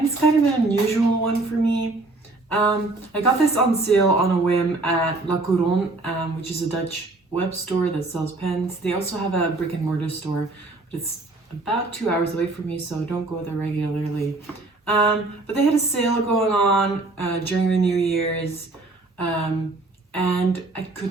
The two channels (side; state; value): left; quieter; 3.2 dB